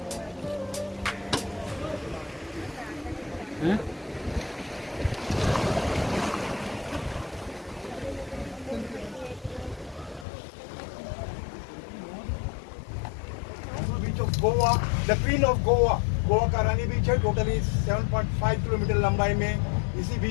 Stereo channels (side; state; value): right; drops out; at 10.2 s